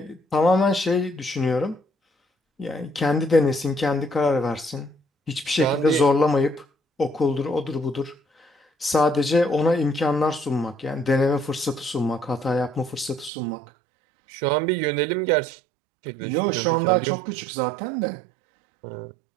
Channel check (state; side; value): drops out; left; at 13.3 s